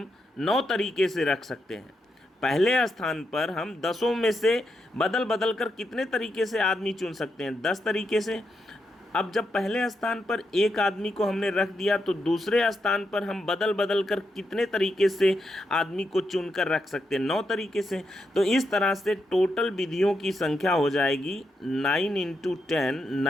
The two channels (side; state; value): both; normal; correlation 0.83